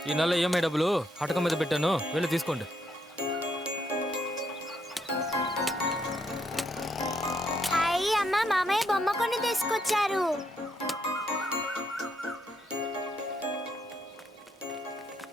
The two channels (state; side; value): normal; both; correlation 0.75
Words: ఈ నెల ఈఎంఐ డబ్బులు హటకం మీద పెట్టాను, వెళ్ళి తీసుకోండి. హాయ్ అమ్మ, మామయ్య బొమ్మ కొని తీసుకొచ్చారు.